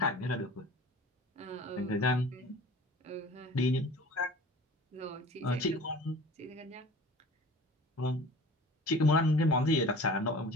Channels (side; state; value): both; normal; correlation 0.43